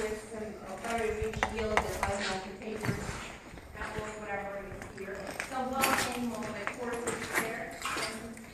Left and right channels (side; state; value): both; identical; correlation 1.00